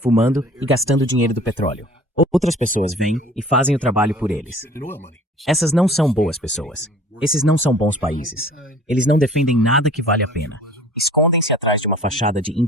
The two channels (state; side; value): normal; both; correlation 0.48